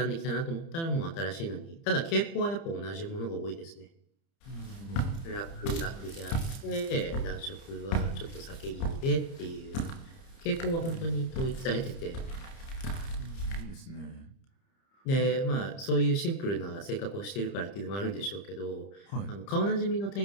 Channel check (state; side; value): late; right; 30 ms